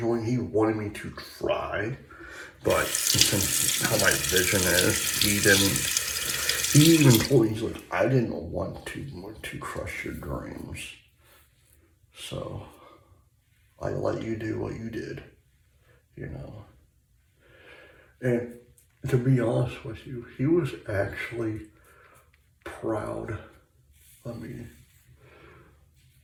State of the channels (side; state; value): both; identical; correlation 1.00